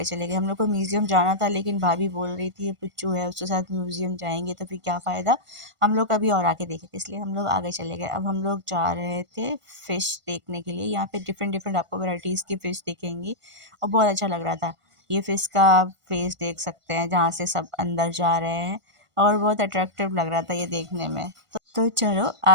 चले गए। हम लोग को म्यूज़ियम जाना था, लेकिन भाभी बोल रही थी ये पुच्चू है, उसके साथ म्यूज़ियम जाएंगे तो फिर क्या फ़ायदा, हम लोग कभी और आके देखेंगे, इसलिए हम लोग आगे चले गए। अब हम लोग जा रहे थे फ़िश देखने के लिए। यहाँ पे डिफरेंट आपको वैराइटीज़ की फ़िश दिखेंगी और बहुत अच्छा लग रहा था। ये फ़िश का फेस देख सकते हैं जहाँ से सब अंदर जा रहे हैं, और बहुत अट्रैक्टिव लग रहा था ये देखने में। तो चलो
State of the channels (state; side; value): late; left; 1.5 ms